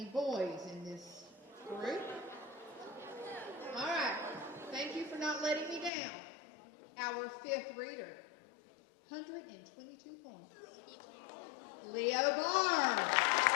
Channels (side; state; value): right; drops out; at 5.9 s